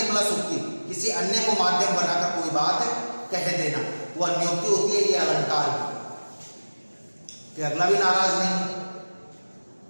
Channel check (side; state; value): both; inverted; correlation -1.00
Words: प्लस उक्ति, किसी अन्य को माध्यम बनाकर कोई बात कह देना, वो अन्योक्ति होती है। ये अलंकार कि अगला भी नाराज नहीं,